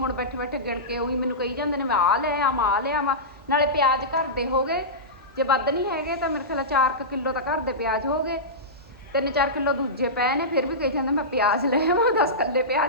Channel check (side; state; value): both; normal; correlation -0.17